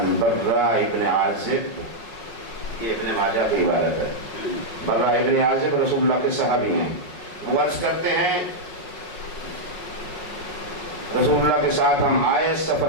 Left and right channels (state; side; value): late; right; 5.5 ms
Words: برا ابن عازب، یہ ابن ماجہ کی عبارت ہے. برا ابن عازب رسول اللہ کے صحابی ہیں. وہ عرض کرتے ہیں رسول اللہ کے ساتھ ہم آئے